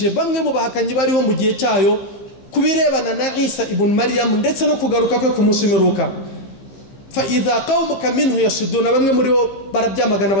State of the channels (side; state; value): right; late; 15 ms